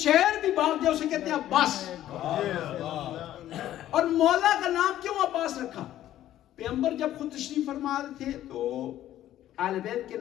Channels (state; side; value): quieter; right; 12.8 dB